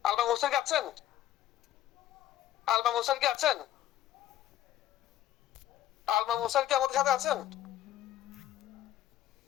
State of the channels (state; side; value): quieter; right; 12.5 dB